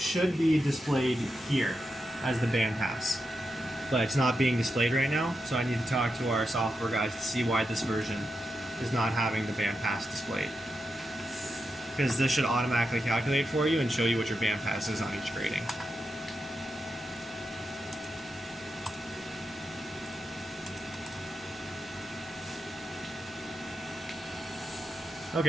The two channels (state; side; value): normal; both; correlation 0.87